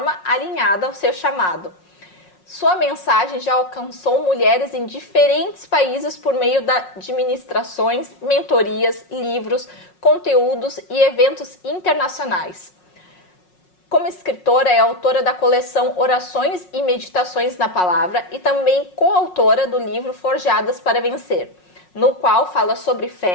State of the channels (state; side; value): late; right; 5.5 ms